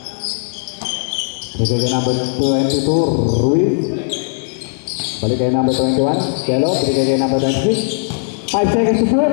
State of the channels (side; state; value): right; silent; 68 dB below the other